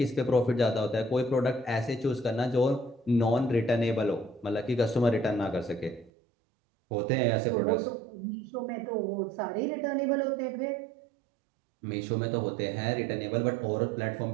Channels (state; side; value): drops out; left; at 6.1 s